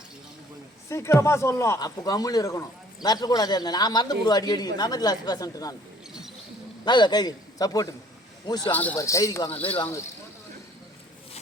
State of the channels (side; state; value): both; normal; correlation 0.56